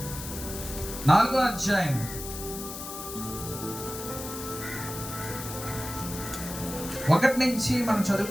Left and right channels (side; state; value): left; noise; hiss, 9 dB below the sound